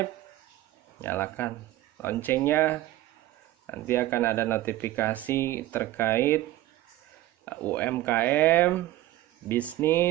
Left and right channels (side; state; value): left; quieter; 15.9 dB